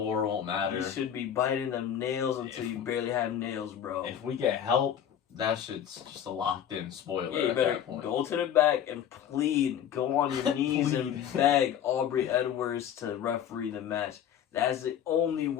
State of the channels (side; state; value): right; quieter; 9.4 dB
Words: won't matter. You should be biting them nails until you barely have nails, bro. If we get help, that shit's just a locked in spoiler. Yeah, you at better that point. go to the back and plead. Go on your knees and beg Aubrey Edwards to referee the match. That's the only